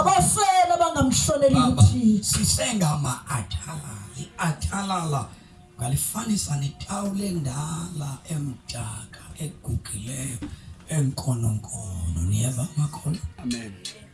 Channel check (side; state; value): both; identical; correlation 1.00